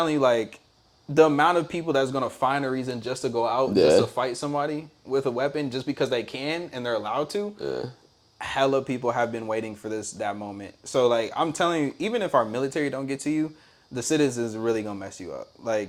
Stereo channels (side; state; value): both; identical; correlation 1.00